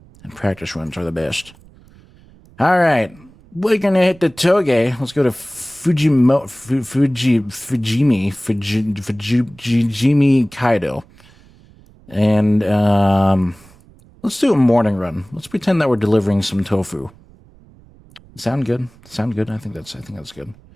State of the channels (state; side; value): noise; right; rumble, 26 dB below the sound